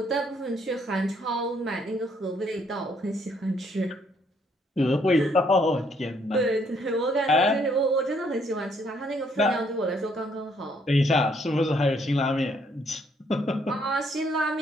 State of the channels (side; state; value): both; normal; correlation 0.69